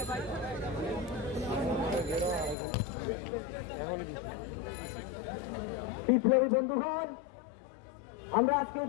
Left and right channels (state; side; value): drops out; right; at 2.6 s